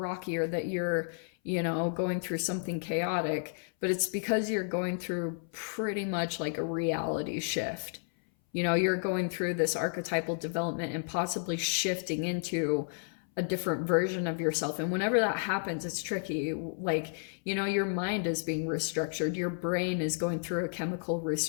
or that you're, you know, going through something chaotic, but it's because you're going through pretty much like a reality shift. You know, you're going through this archetypal development and possibly shifting into a different version of yourself. And whenever that happens, it's tricky. Like, you know, your mind is being restructured. Your brain is going through a chemical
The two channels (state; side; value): silent; right; 57 dB below the other